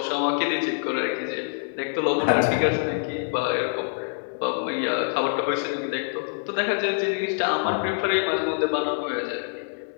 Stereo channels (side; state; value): right; silent; digital silence